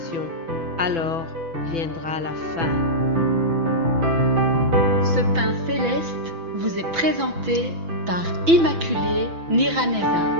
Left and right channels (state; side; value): late; left; 6.0 ms